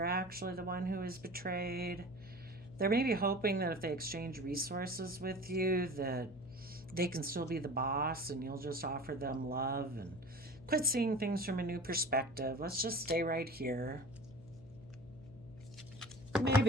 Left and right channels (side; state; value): left; noise; hum, 19 dB below the sound